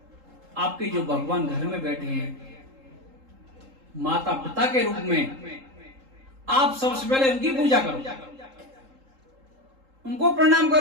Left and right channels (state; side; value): late; left; 3.8 ms